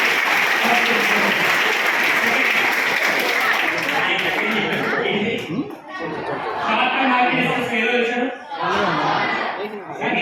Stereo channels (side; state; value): both; identical; correlation 1.00